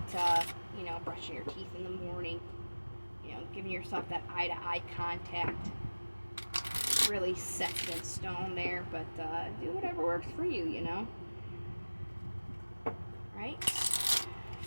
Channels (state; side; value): inverted; both; correlation -1.00